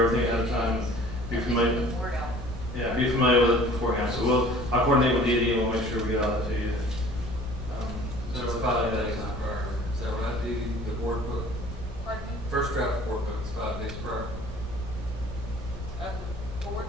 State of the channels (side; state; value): both; normal; correlation 0.49